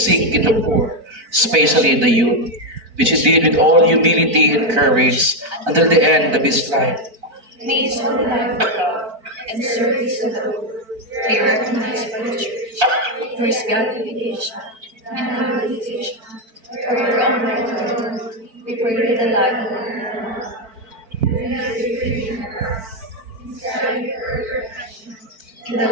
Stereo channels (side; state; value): left; late; 4.5 ms